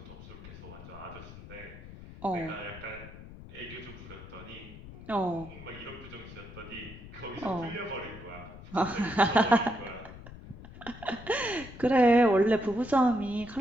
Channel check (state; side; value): noise; left; rumble, 15 dB below the sound